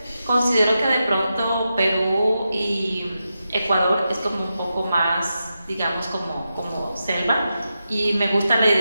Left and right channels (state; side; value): inverted; both; correlation -0.89